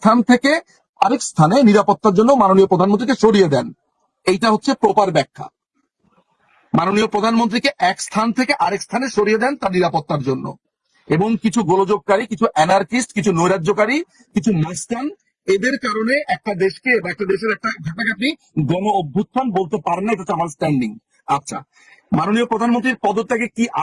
থেকে আরেক স্থানে নিরাপত্তার জন্য মাননীয় প্রধানমন্ত্রীকে সরিয়ে দেন। এইটা হচ্ছে প্রপার ব্যাখ্যা। মাননীয় প্রধানমন্ত্রীকে এক স্থান থেকে আরেক স্থানে সরিয়ে দেন তার নিরাপত্তার জন্য। এবং কিছু গোলযোগকারী, কিছু অ্যানার্কিস্ট, কিছু নৈরাজ্যকারী, কিছু মাস্তান, এদের কারণে একটা দেশকে বা একটা দেশের একটা ঘটনাকে আপনি গণ অভ্যুত্থান বলতে পারেন না। এটা হচ্ছে আমার স্ট্যান্ডিং। আচ্ছা, মাননীয় প্রধানমন্ত্রীর পদত্যাগে কি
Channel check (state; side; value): identical; both; correlation 1.00